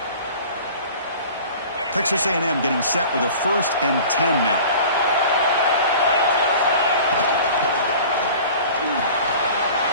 Texas A&M getting set with a 1st and 10 now.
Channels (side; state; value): both; inverted; correlation -0.43